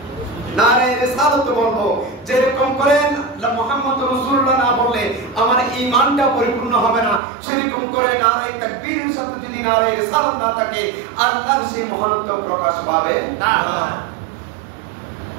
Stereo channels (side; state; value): left; drops out; at 7.2 s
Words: নারায়ে রিসালাত বলবো। যেরকম করেন মুহাম্মদ রাসূলুল্লাহ না বললে আমার ঈমানটা পরিপূর্ণ হবে না, সেরকম করে নারায়ে তাকবীরের সাথে যদি নারায়ে রিসালাত না থাকে, আল্লাহর সেই মহানত্ব প্রকাশ পাবে না।